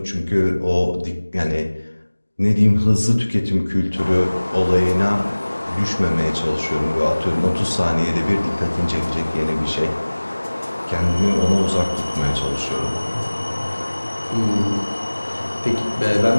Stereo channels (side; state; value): both; inverted; correlation -1.00